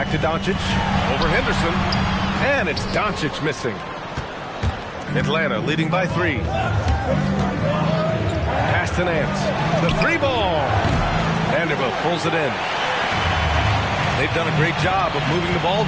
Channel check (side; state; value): both; identical; correlation 1.00